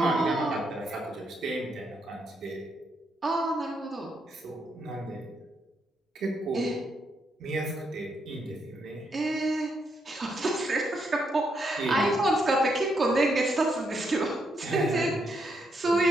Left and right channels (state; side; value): normal; both; correlation 0.78